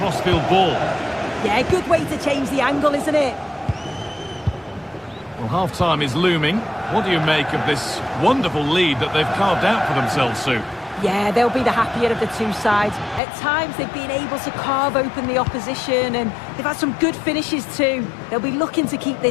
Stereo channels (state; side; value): drops out; right; at 13.2 s